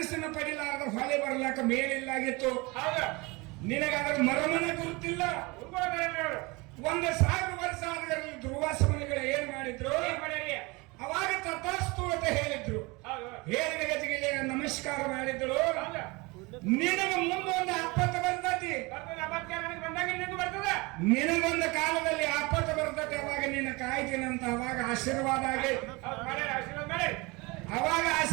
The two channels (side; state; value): left; quieter; 25.4 dB